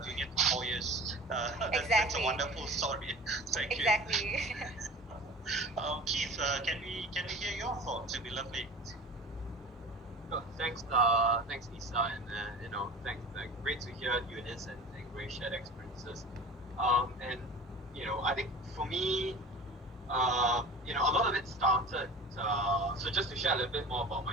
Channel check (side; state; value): both; normal; correlation 0.38